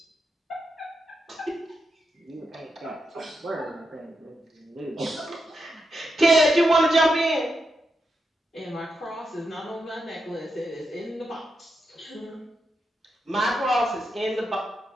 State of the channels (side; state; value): both; normal; correlation 0.85